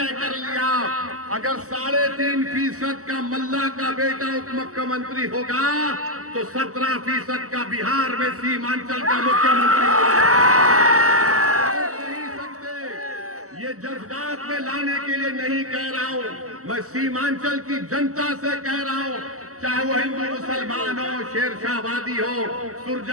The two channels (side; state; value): left; late; 0.65 ms